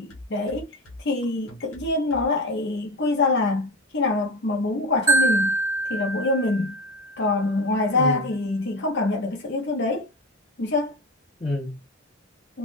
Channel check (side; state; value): both; normal; correlation 0.24